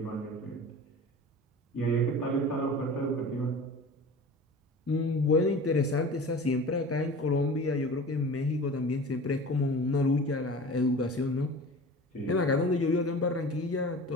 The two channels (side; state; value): both; normal; correlation 0.38